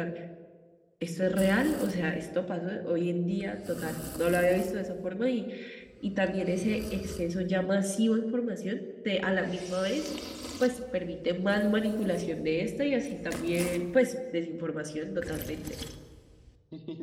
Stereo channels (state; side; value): identical; both; correlation 1.00